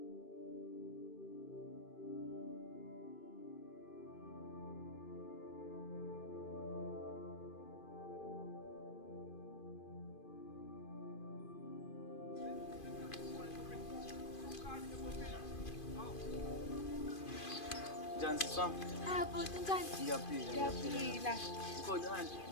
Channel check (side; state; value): right; late; 2.5 ms